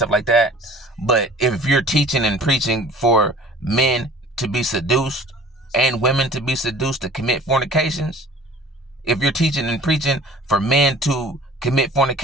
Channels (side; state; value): both; normal; correlation 0.47